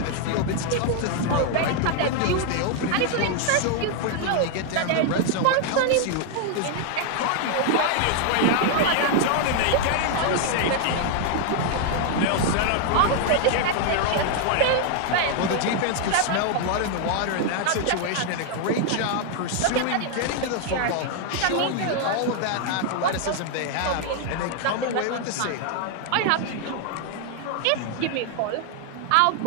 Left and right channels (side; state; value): both; different; correlation 0.00